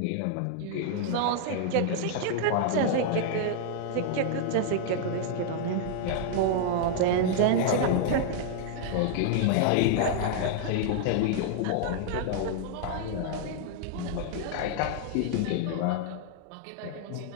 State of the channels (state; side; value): different; both; correlation -0.01